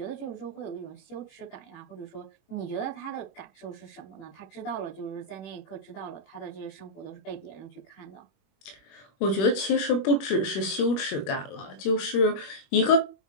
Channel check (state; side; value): late; right; 21 ms